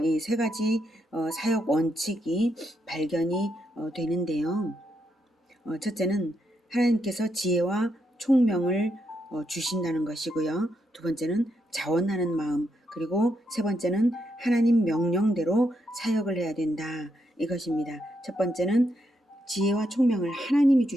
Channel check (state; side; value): normal; both; correlation 0.80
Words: 이 세 가지 사역 원칙이 발견이 되는데요. 첫째는 하나님께서 지혜와 총명을 주신다는 것이고요. 두 번째는 자원하는 마음, 그리고 세 번째는 하나님 명령대로 사역을 해야 된다. 이것입니다. 첫 번째는 지혜와 총명을 하나님이